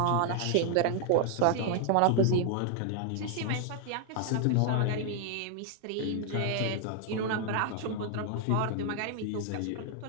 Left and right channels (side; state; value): both; different; correlation 0.00